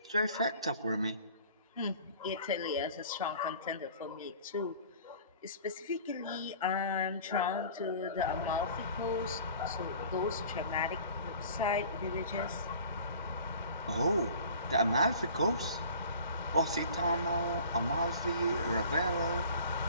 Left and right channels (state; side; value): inverted; both; correlation -0.46